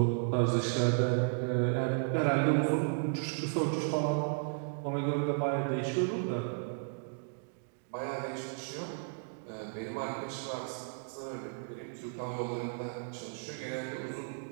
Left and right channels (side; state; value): left; silent; digital silence